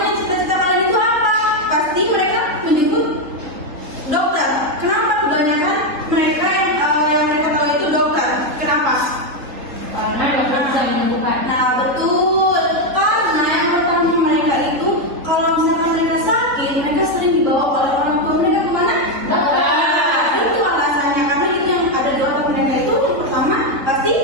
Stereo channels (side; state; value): left; late; 4.0 ms